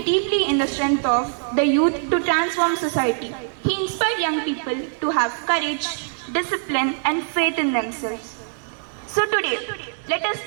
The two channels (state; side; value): silent; left; 57 dB below the other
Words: deeply in the strength of the youth to transform society. He inspired young people to have courage, discipline, and faith in themselves. So today, let us